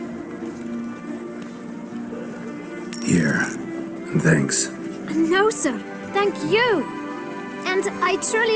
Here. And thanks. No, sir. Thank you. And I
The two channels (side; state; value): both; identical; correlation 1.00